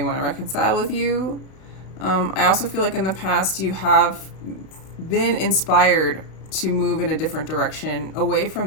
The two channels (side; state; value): right; late; 32 ms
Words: to reconcile with you. I also feel like in the past, you have been inspired to move in a different direction, away